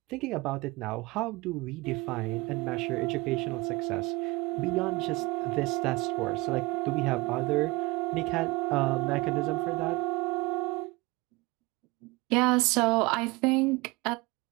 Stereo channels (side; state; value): left; quieter; 23.2 dB